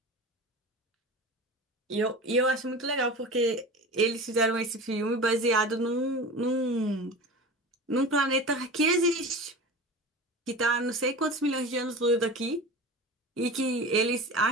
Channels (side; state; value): both; normal; correlation 0.33